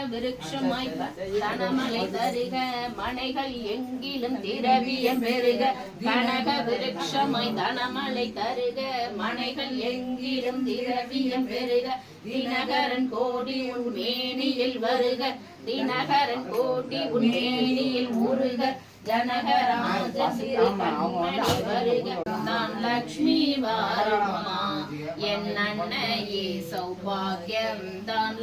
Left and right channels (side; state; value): both; identical; correlation 1.00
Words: விருட்சமாய் தனமலை தருக மனைகள் எங்கிலும் திரவியம் பெருக. கனக விருட்சமாய் தனமலை தருக மனைகள் எங்கிலும் திரவியம் பெருக. தினகரன் கோடி உன் மேனியில் வருக. தினகரன் கோடி உன் மேனியில் முருக. ஜனகராஜ கண்மணி வருக. நான் லக்ஷ்மி வாருமம்மா. என் அன்னையே சௌபாகியம் தான்